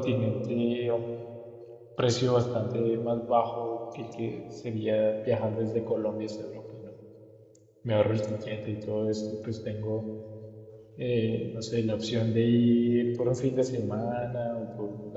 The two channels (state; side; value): identical; both; correlation 1.00